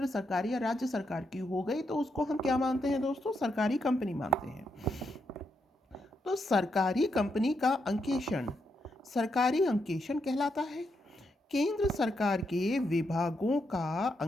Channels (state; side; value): normal; both; correlation 0.81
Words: सरकार या राज्य सरकार की हो गई, तो उसको हम क्या मानते हैं दोस्तों, सरकारी कंपनी मानते हैं। तो सरकारी कंपनी का अंकेक्षण सरकारी अंकेक्षण कहलाता है। केंद्र सरकार के विभागों का